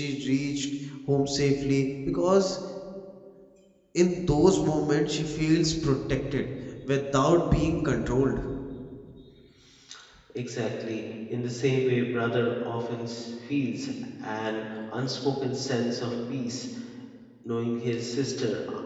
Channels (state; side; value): identical; both; correlation 1.00